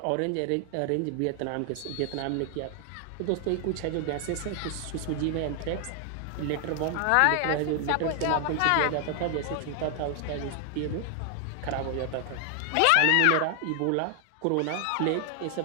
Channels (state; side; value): different; both; correlation 0.00